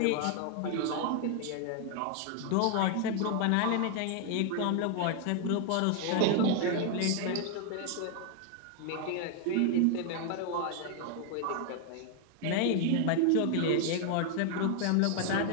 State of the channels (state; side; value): different; both; correlation 0.00